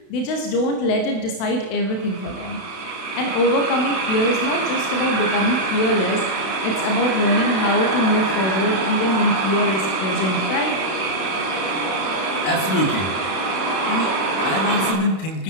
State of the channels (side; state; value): right; late; 31 ms